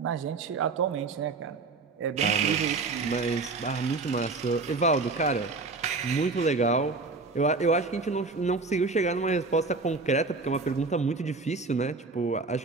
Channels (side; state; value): left; quieter; 3.9 dB